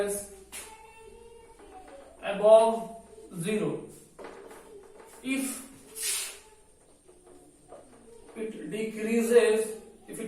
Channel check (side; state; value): both; identical; correlation 1.00